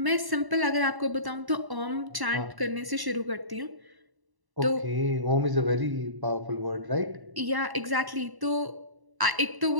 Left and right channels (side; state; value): left; late; 1.1 ms